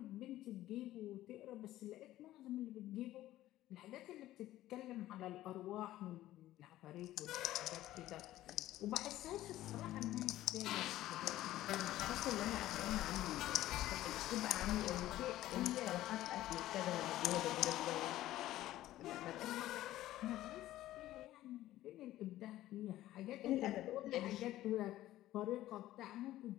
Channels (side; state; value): right; quieter; 14.7 dB